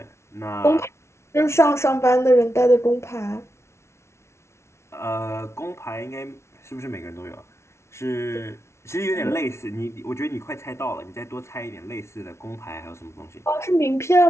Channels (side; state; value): right; late; 0.13 ms